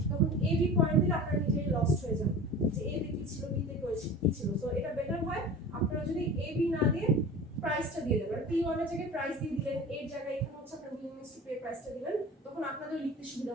তখন এ বি পয়েন্ট দিলে আপনারা নিজেই লস্ট হয়ে যান যে এ তে কি ছিল বি তে কি ছিল। সো এটা বেটার হয় আপনারা যদি এ বি না দিয়ে প্রাইসটা দিয়ে দেবেন, P1 এর জায়গায় প্রাইস দিয়ে দিলেন, এর জায়গায় এখানে হচ্ছে আপনার willingness to pay প্রাইসটা দিবেন, তখন আপনাদের লিখতে সুবিধা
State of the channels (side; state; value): both; normal; correlation 0.36